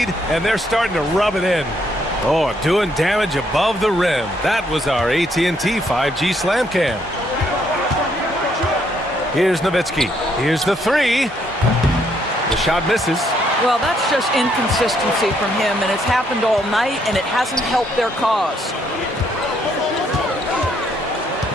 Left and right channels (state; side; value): normal; both; correlation 0.71